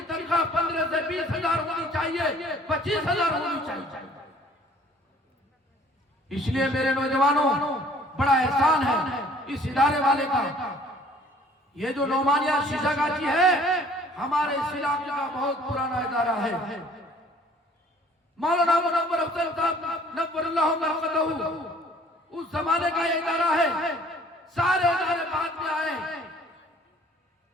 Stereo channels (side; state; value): both; normal; correlation 0.55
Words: تنخواہ 15 سے 20 ہزار ہونی چاہیے، 25 ہزار ہونی چاہیے۔ اس لیے میرے نوجوانوں، بڑا احسان ہے اس ادارے والے کا۔ یہ جو نعمانیہ شیشہ گاچی ہے، ہمارے اس علاقے کا بہت پرانا ادارہ ہے۔ مولانا منور افضل صاحب نور اللہ مرقدہ اس زمانے کا یہ ادارہ ہے۔ سارے ادارے بعد میں آئے،